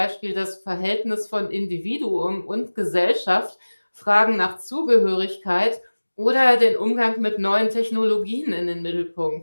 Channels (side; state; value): both; inverted; correlation -1.00